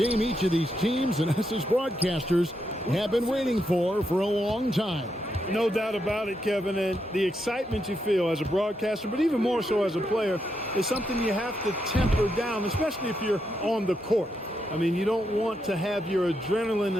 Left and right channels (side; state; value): both; normal; correlation 0.81